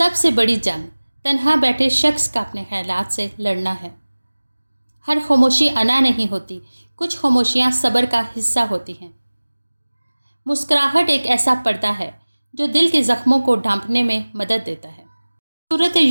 سے بڑی جنگ تنہا بیٹھے شخص کا اپنے خیالات سے لڑنا ہے۔ ہر خاموشی انا نہیں ہوتی، کچھ خاموشیاں صبر کا حصہ ہوتی ہیں۔ مسکراہٹ ایک ایسا پردہ ہے جو دل کے زخموں کو ڈھانپنے میں مدد دیتا ہے۔ سورۃ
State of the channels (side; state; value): both; inverted; correlation -1.00